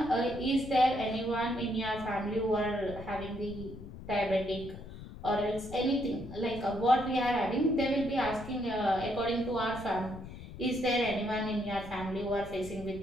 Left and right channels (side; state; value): left; noise; rumble, 13 dB below the sound